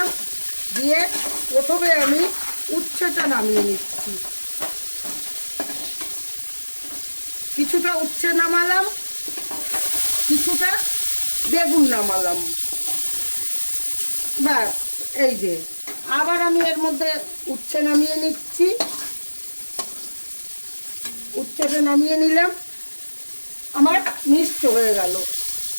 দিয়ে প্রথমে আমি উচ্ছেটা নামিয়ে নিচ্ছি। কিছুটা উচ্ছে নামালাম, কিছুটা বেগুন নামালাম। ব্যাস, এই যে আবার আমি এর মধ্যে উচ্ছে নামিয়ে নিচ্ছি। উচ্ছেটা নামিয়ে নিলাম, আমার মিক্সড হয়ে গেল।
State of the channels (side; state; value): both; inverted; correlation -1.00